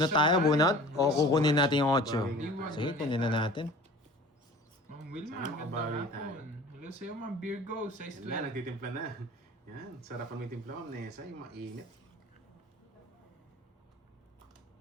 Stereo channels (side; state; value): both; normal; correlation 0.43